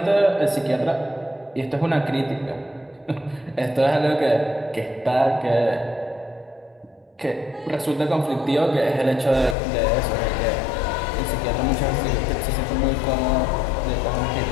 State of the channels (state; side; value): drops out; right; at 9.6 s